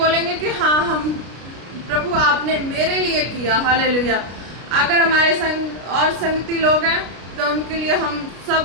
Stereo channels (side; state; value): left; late; 33 ms